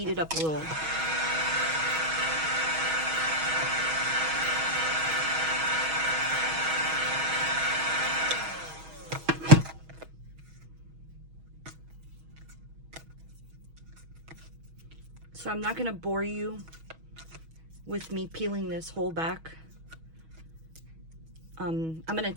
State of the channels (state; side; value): late; left; 6.2 ms